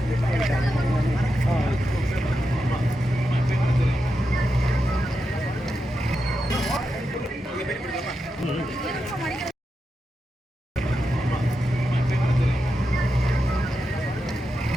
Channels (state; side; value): normal; both; correlation 0.88